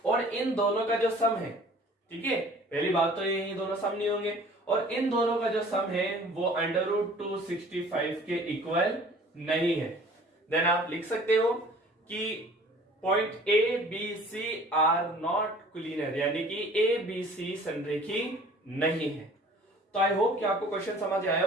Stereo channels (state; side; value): normal; both; correlation 0.49